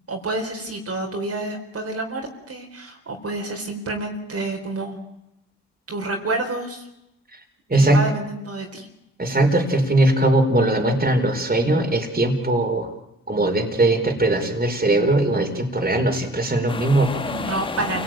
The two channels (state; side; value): normal; both; correlation 0.52